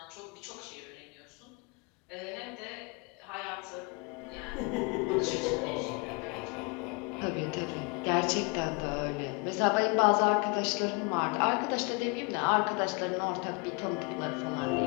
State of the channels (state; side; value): quieter; right; 30.8 dB